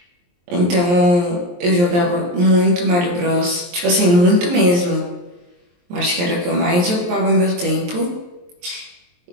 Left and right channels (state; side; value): late; left; 23 ms